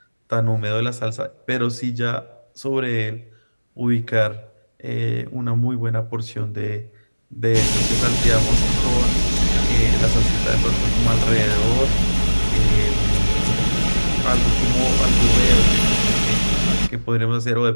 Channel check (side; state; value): both; inverted; correlation -1.00